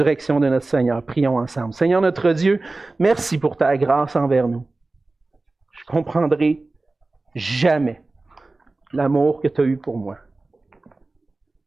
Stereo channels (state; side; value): quieter; left; 3.3 dB